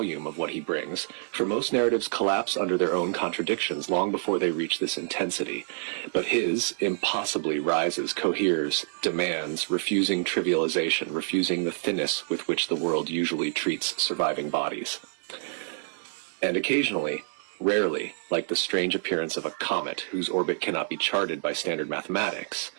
of what he brings. For most narratives collapse under their own contradictions long before they reach this intensity. But his impossibly rises, coheres, demands, refusing trivialization, refusing the thinness with which the world usually treats surviving bodies. And occasionally, rarely, like the strange appearance of a comet whose orbit cannot be charted by standard mathematics,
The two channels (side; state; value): left; silent; 60 dB below the other